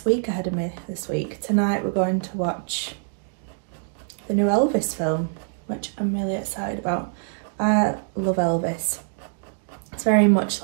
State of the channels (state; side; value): silent; left; digital silence